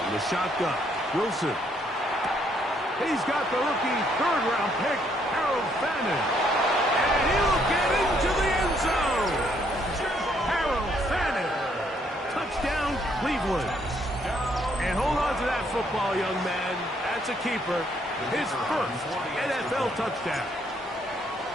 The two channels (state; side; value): normal; both; correlation 0.69